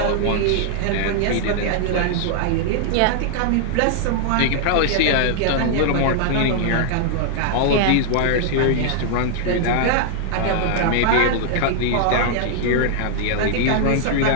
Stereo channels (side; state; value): both; different; correlation -0.01